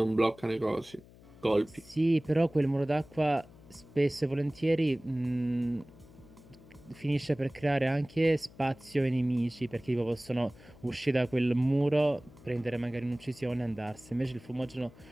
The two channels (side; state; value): left; noise; hum, 23 dB below the sound